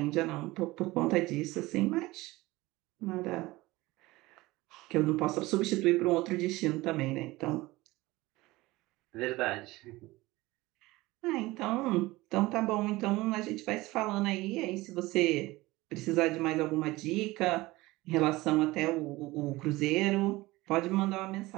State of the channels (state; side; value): quieter; left; 19.9 dB